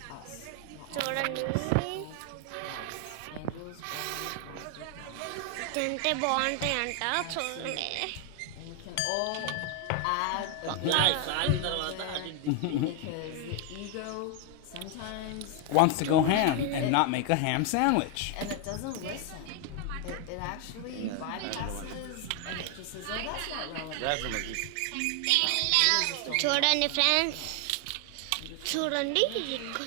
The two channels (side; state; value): both; different; correlation 0.01